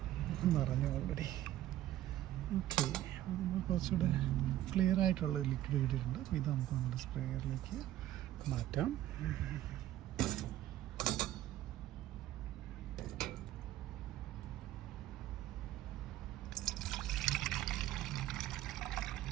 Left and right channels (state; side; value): quieter; left; 13.6 dB